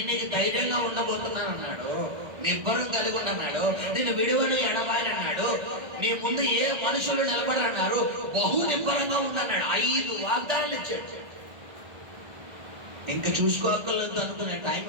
నీకు ధైర్యంగా ఉండబోతున్నాను అన్నాడు, నిబ్బరం కలిగి ఉండన్నాడు, నేను విడువను ఎడబాయని అన్నాడు, నీ ముందు ఏ మనుషులు నిలబడరన్నారు, బహు నిబ్బరంగా ఉండన్నాడు. 5 వాగ్దానాలు ఇచ్చాడు. ఇంకా చూసుకోగలదు అనుకునే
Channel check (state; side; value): late; left; 1.6 ms